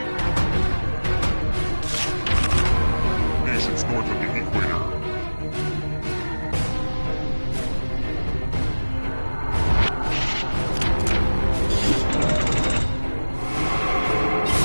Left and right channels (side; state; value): both; inverted; correlation -1.00